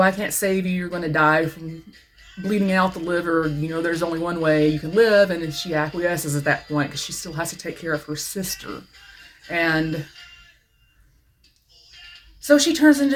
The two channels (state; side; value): identical; both; correlation 1.00